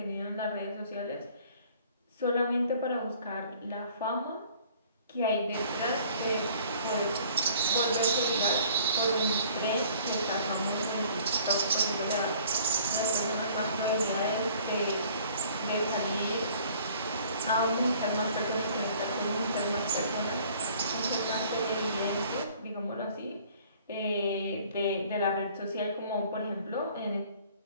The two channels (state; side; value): inverted; both; correlation -0.54